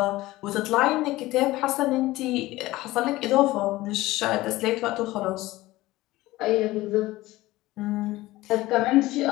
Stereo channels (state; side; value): quieter; right; 18.2 dB